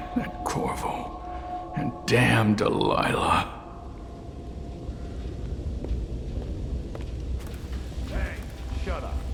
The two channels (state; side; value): identical; both; correlation 1.00